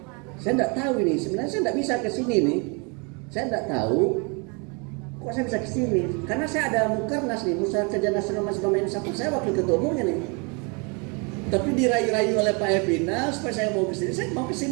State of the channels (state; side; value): quieter; left; 32.9 dB